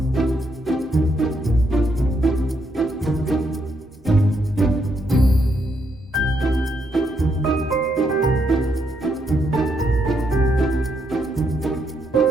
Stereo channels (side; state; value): both; normal; correlation 0.77